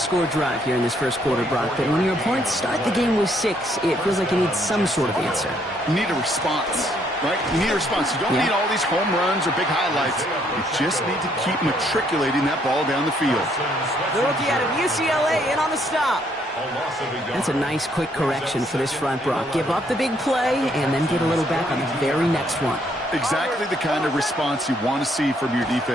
drive here in this 1st quarter, Brock, but when your opponents start the game with 6, it feels like you need some sort of answer. You need a response, right? You need a response. You don't need all these home runs or big highlights. You just need to keep matriculating that ball down the field. The rookie out of UCLA in on the stop. That's a nice, quick correction for this front, Brock. Give up the big play and then get a little back on the very next one. Exactly the kind of response you want to see from your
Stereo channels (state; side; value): normal; both; correlation 0.69